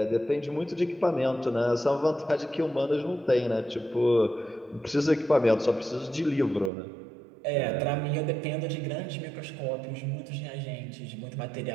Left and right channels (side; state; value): left; drops out; at 6.7 s